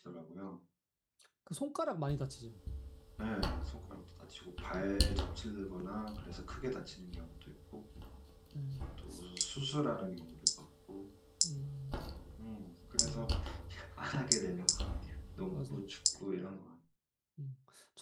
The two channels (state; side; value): identical; both; correlation 1.00